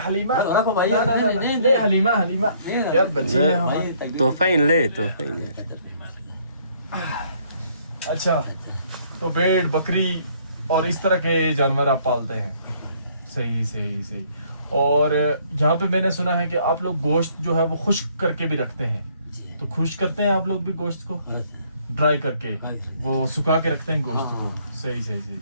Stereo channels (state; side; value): inverted; both; correlation -0.64